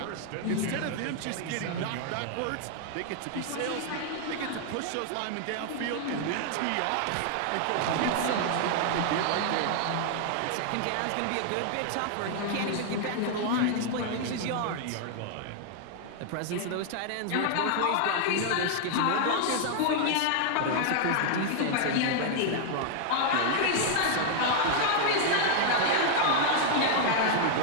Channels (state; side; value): different; both; correlation 0.00